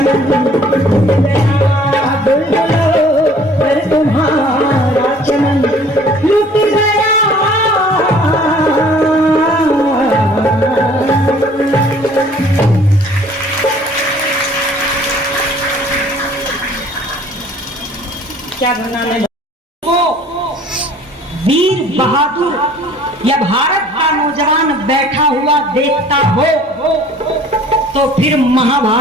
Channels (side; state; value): both; normal; correlation 0.53